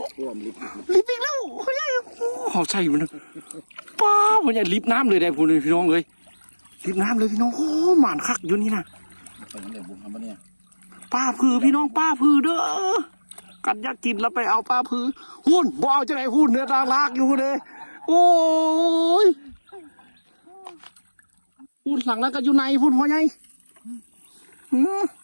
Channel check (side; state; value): both; inverted; correlation -1.00